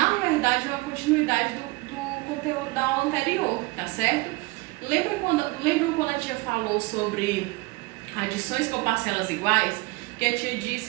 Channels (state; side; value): quieter; left; 23.0 dB